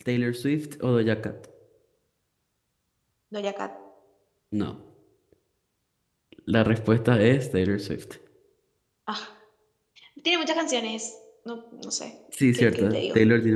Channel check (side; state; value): both; identical; correlation 1.00